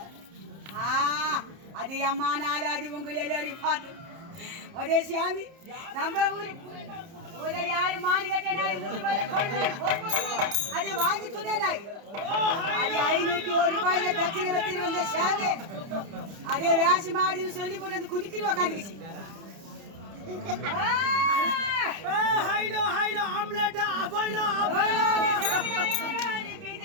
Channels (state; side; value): late; left; 30 ms